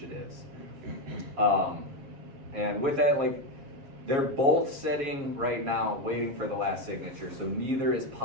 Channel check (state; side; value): late; left; 7.3 ms